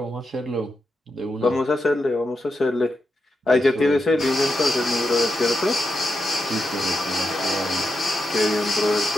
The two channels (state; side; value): normal; both; correlation 0.86